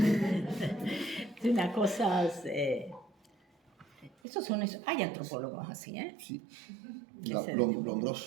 Es una cosa... hay antropólogos así, ¿eh? Sí.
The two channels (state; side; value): drops out; left; at 4.2 s